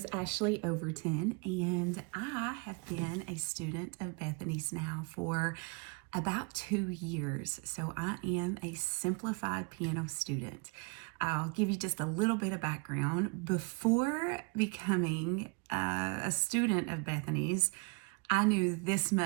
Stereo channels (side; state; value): left; quieter; 30.5 dB